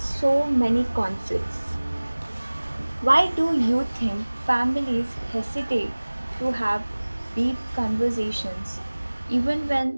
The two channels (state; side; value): inverted; both; correlation -1.00